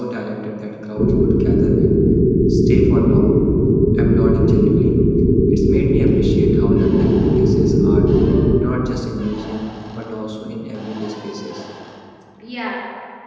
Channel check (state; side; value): identical; both; correlation 1.00